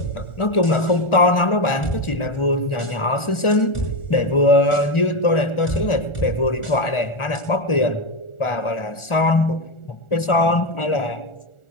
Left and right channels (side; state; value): right; late; 1.4 ms